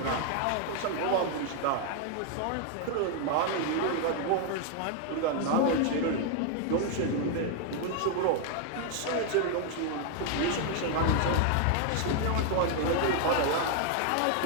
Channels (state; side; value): different; both; correlation 0.00